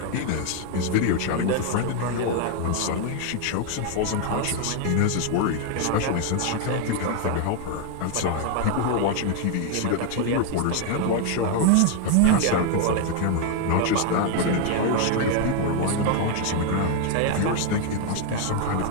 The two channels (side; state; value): both; different; correlation 0.00